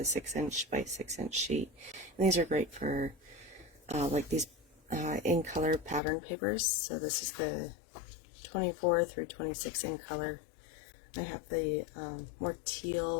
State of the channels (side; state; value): right; drops out; at 6.0 s